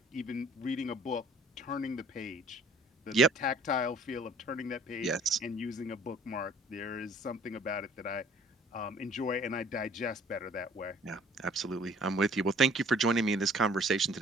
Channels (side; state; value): both; normal; correlation 0.54